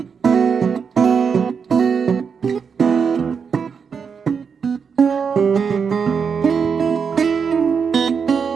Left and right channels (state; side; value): quieter; left; 6.2 dB